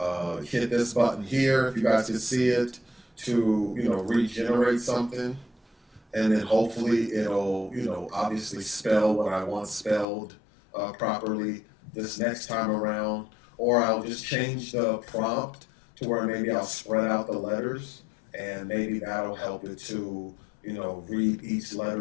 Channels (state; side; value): drops out; right; at 10.1 s